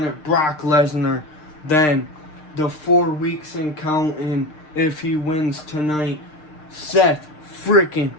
Brock Lesnar. Then, the 4 weeks and counting, if he wins tonight, Seth freaking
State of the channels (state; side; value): late; right; 6.6 ms